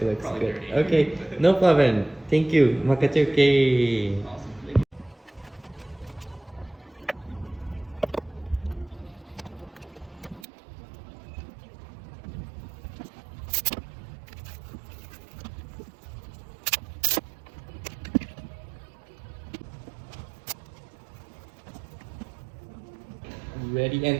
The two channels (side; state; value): left; drops out; at 10.5 s